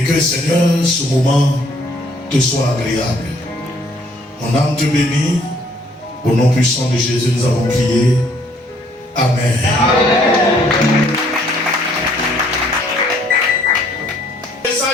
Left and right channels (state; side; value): normal; both; correlation 0.63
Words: que, Seigneur, ce moment te soit agréable. Mon âme te bénit. Au nom puissant de Jésus, nous avons prié. Amen. Le